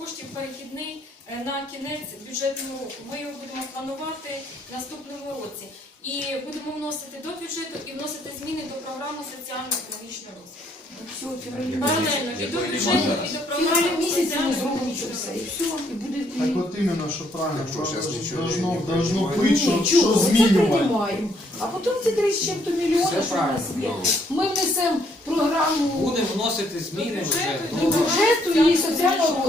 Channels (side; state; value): both; normal; correlation 0.69